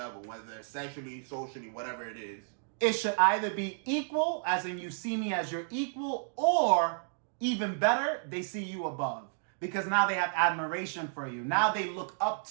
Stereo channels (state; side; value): silent; left; digital silence